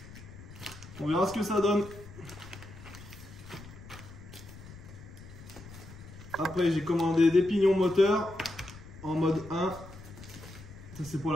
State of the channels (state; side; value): noise; left; rumble, 16 dB below the sound